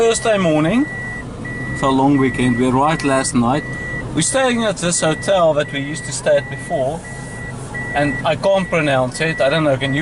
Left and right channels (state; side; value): identical; both; correlation 1.00